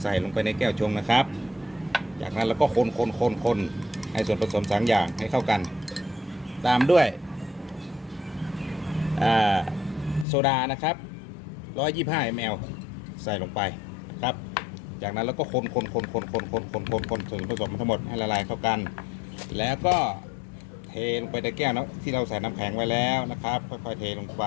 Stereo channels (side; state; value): right; drops out; at 10.2 s